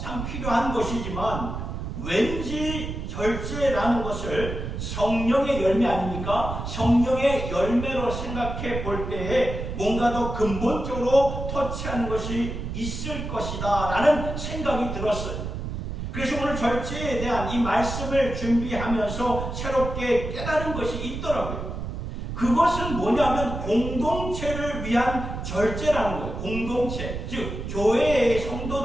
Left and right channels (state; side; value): noise; right; rumble, 6 dB below the sound